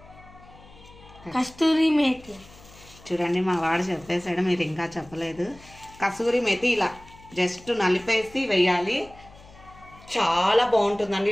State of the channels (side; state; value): left; noise; hum, 23 dB below the sound